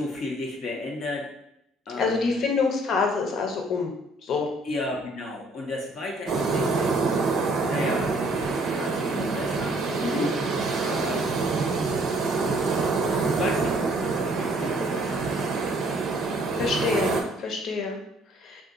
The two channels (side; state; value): both; normal; correlation 0.61